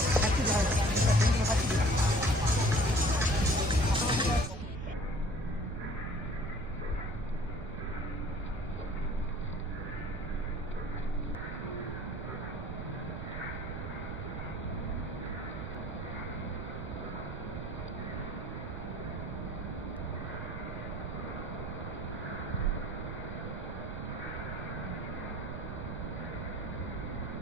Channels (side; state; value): right; noise; rumble, 6 dB below the sound